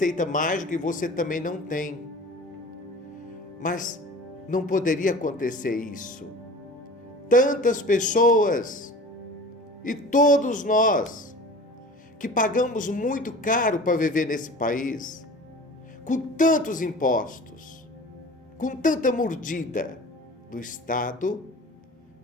mágica e você também não tem. Mas não poderia acontecer isso. Tantas pessoas e todos nós que pagamos muito caro para viver nesse país, com tantos impostos, com tanta mordida do Estado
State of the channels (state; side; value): normal; both; correlation 0.40